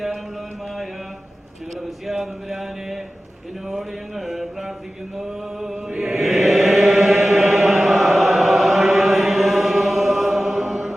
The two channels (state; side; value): normal; both; correlation 0.95